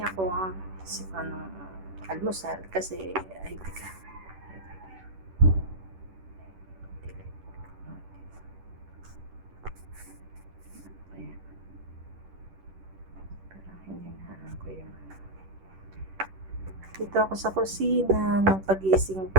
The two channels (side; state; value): left; late; 10 ms